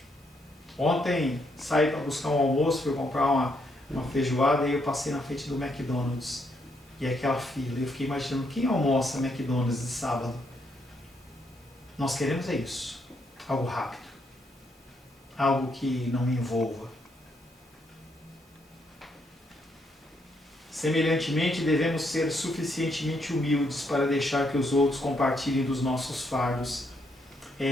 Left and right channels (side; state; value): both; normal; correlation 0.75